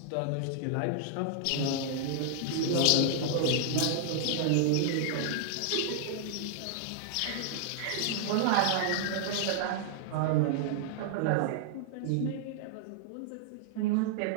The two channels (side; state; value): both; different; correlation -0.01